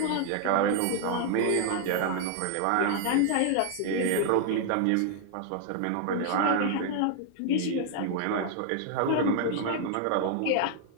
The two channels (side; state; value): both; different; correlation 0.00